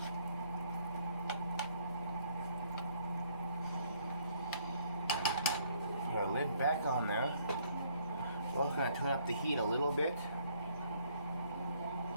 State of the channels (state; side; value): inverted; both; correlation -0.65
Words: Put our lid back on there. Also gonna turn up the heat a little bit.